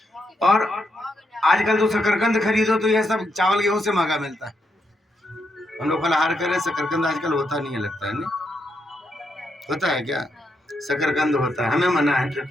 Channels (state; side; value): normal; both; correlation 0.80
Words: और आजकल तो शकरकंद खरीदो तो यह सब चावल गेहूं से महंगा मिलता है। हम लोग फलाहार करें, शकरकंद आजकल होता नहीं है, लगता है नहीं होता है क्या? शकरकंद होता है, हमें मना है